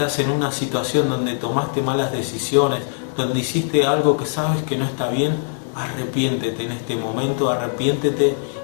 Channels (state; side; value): silent; right; digital silence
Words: en una situación donde tomaste malas decisiones, donde hiciste algo que sabes que no está bien, arrepiéntete en este momento, arrepiéntete